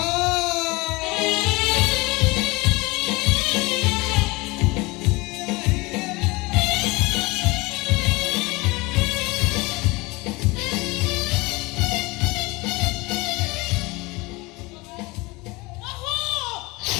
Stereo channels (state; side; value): quieter; right; 23.9 dB